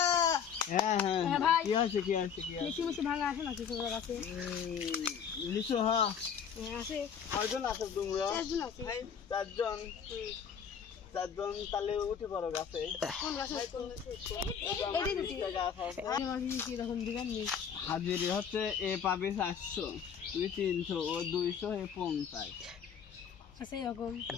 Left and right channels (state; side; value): quieter; right; 7.4 dB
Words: ভাই কি হয়েছে লিচু ভাঙা আছে নাকি তোমার কাছে লিচু হ্যাঁ আছে কয়জন আছো তোমরা চারজন তাহলে উঠে পড়ো গাছে হাজিরি হচ্ছে এ পাবি 400 তুই 300 ও 200 এ 50